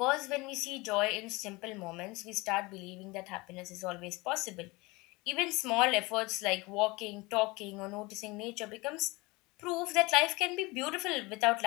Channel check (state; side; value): quieter; right; 24.0 dB